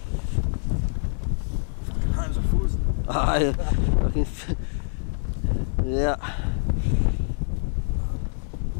I can, yeah.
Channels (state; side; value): silent; right; digital silence